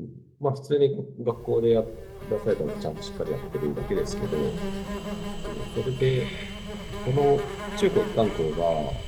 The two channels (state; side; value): identical; both; correlation 1.00